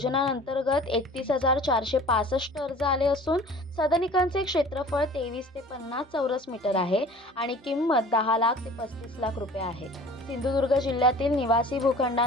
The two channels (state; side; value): normal; both; correlation 0.45